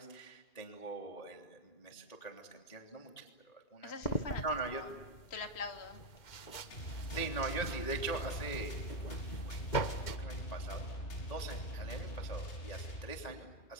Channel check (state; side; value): late; right; 2.4 ms